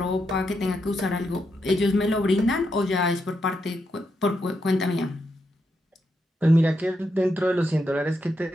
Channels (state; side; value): normal; both; correlation 0.82